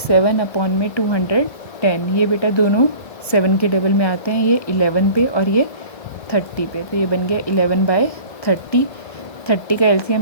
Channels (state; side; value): late; right; 1.6 ms